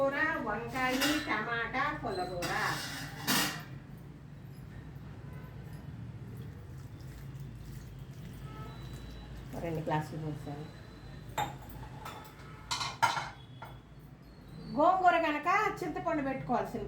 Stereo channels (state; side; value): identical; both; correlation 1.00